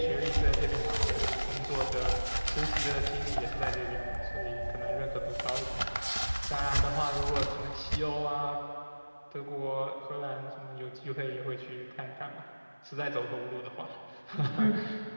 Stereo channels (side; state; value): both; inverted; correlation -1.00